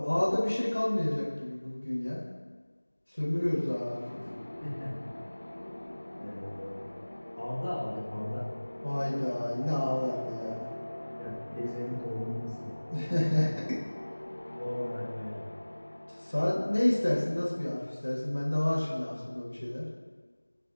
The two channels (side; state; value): both; inverted; correlation -1.00